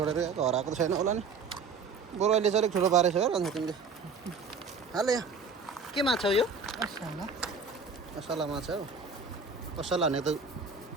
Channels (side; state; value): left; quieter; 5.0 dB